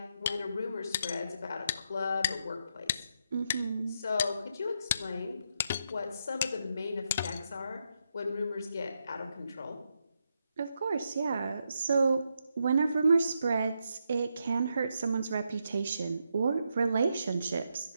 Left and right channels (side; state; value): both; inverted; correlation -0.81